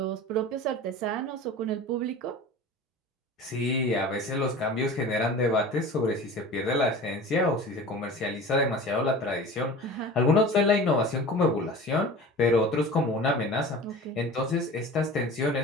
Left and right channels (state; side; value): normal; both; correlation 0.38